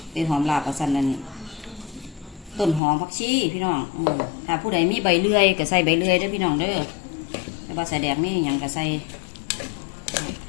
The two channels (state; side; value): drops out; right; at 2.8 s